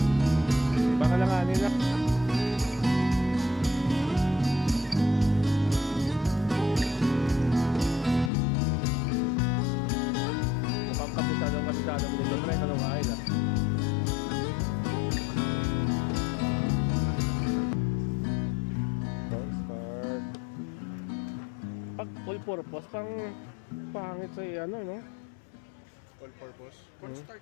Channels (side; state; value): right; drops out; at 8.3 s